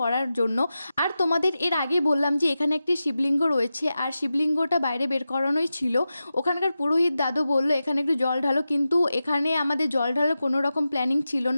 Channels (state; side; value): inverted; both; correlation -0.92